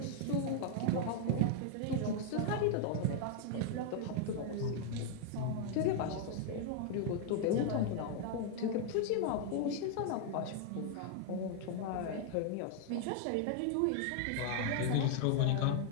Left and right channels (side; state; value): both; different; correlation 0.00